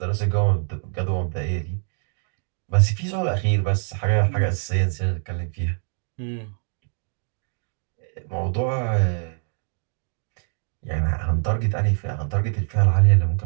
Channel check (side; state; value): left; silent; 62 dB below the other